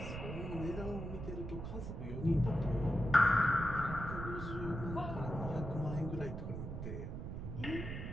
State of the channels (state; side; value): noise; right; rumble, 6 dB below the sound